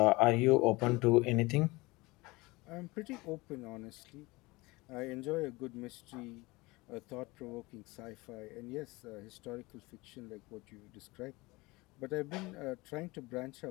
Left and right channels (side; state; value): right; quieter; 22.7 dB